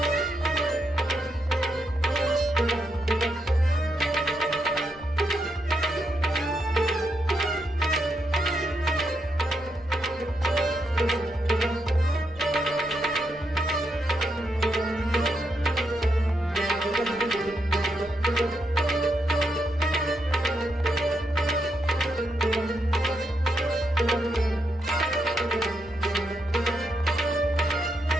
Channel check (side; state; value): left; noise; rumble, 22 dB below the sound